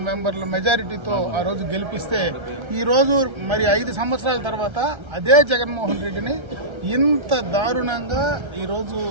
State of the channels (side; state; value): left; late; 1.3 ms